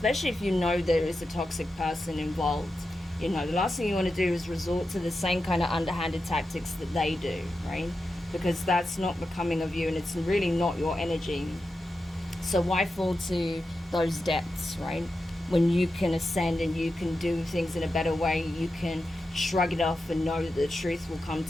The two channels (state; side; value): normal; both; correlation 0.90